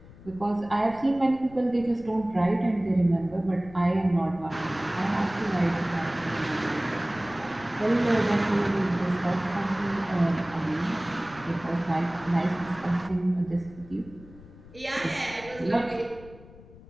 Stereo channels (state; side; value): noise; left; rumble, 20 dB below the sound